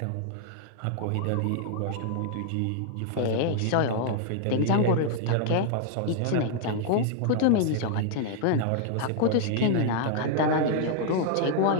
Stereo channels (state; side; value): different; both; correlation 0.00